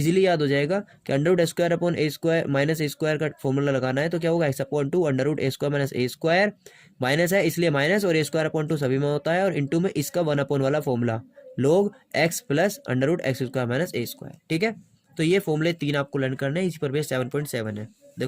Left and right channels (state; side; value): identical; both; correlation 1.00